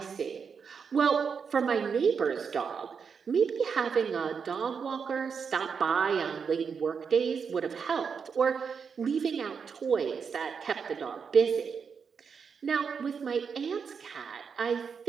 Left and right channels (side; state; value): left; quieter; 6.2 dB